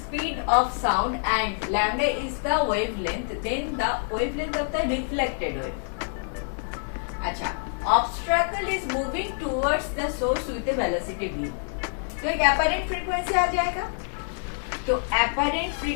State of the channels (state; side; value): silent; right; 61 dB below the other